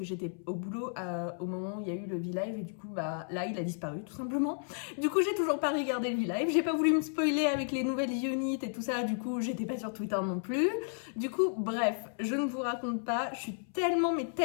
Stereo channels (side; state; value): right; silent; 56 dB below the other